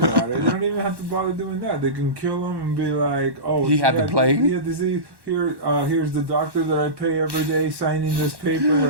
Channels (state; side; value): late; left; 1.1 ms